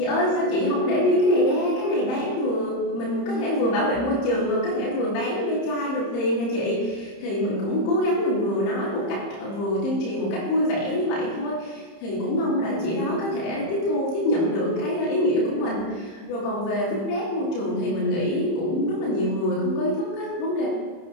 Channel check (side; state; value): right; late; 30 ms